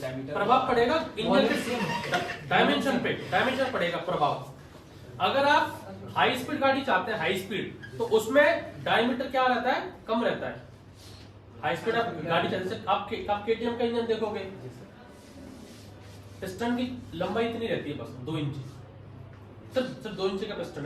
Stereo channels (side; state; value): both; identical; correlation 1.00